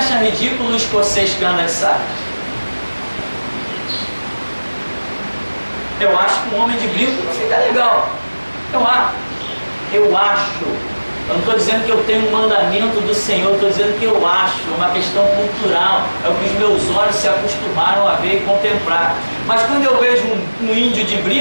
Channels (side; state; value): both; inverted; correlation -1.00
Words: ridículo o escocês que anda de saia? Eu acho que um homem de brinco não fica legal. Eu acho. Eu não estou dizendo que eu tenho um mandamento do Senhor, estou dizendo que eu acho, é uma questão cultural, é o que os meus olhos se acostumaram a ver e contemplar. Mas quando eu vejo um índio de